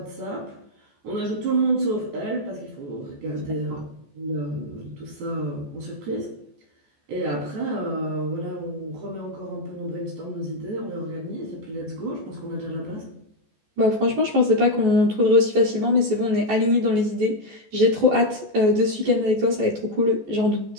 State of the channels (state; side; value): late; left; 14 ms